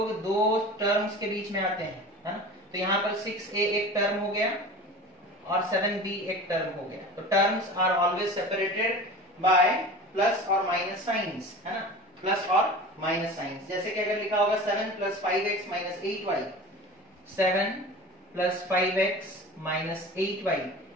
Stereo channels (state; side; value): normal; both; correlation 0.36